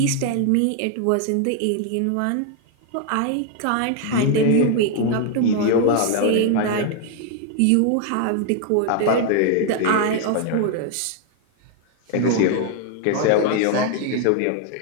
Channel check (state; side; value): different; both; correlation 0.00